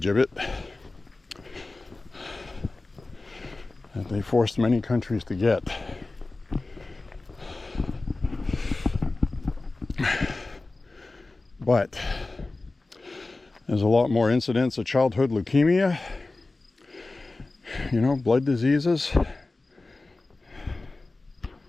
that they forced many countries to get. But there's a lot more incidents of childhood leukemia, you know, blood diseases.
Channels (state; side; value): quieter; right; 3.3 dB